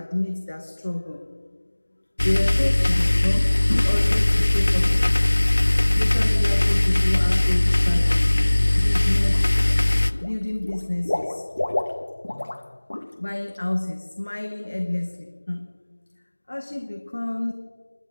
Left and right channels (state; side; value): inverted; both; correlation -1.00